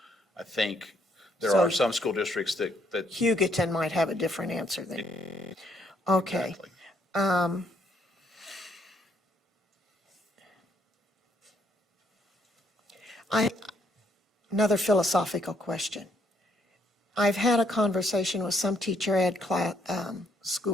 I think there are some school districts that Hugoton might have a different answer than. Okay. Exactly. Another philosophical question. I've had a conversation with some teacher ed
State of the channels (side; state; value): both; normal; correlation 0.70